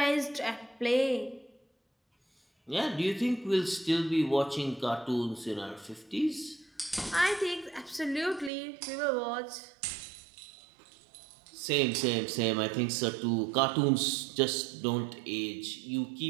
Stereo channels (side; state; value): left; drops out; at 8.5 s